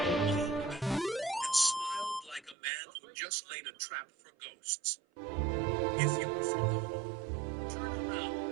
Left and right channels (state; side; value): drops out; left; at 2.6 s